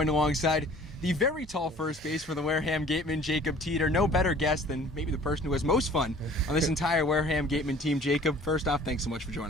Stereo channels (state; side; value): normal; both; correlation 0.50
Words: alongside the very tall first base for the Wareham Gateman, Jacob Teter. No better guest than maybe the person who has most fun on this entire Wareham Gateman team. Jacob, first off, thanks so much for